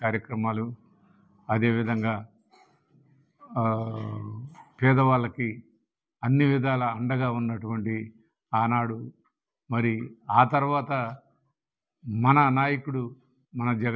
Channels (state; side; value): identical; both; correlation 1.00